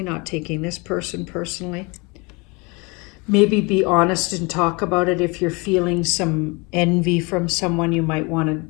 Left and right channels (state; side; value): quieter; right; 28.2 dB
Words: not taking this person personally. Maybe be honest and talk about it. If you're feeling some envy from someone, you might want to